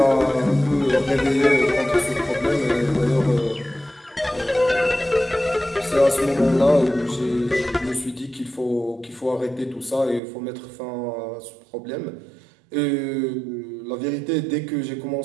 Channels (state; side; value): drops out; left; at 10.2 s